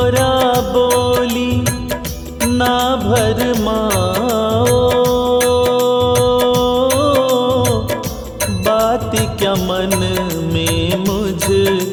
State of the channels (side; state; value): both; identical; correlation 1.00